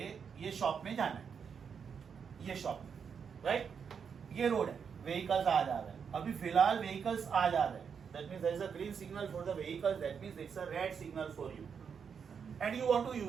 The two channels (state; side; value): quieter; left; 6.7 dB